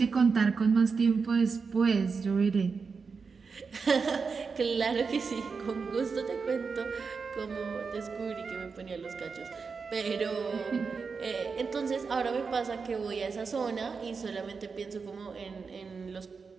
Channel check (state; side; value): quieter; left; 5.1 dB